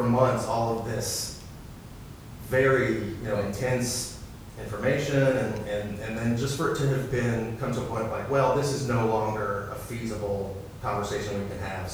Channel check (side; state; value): both; identical; correlation 1.00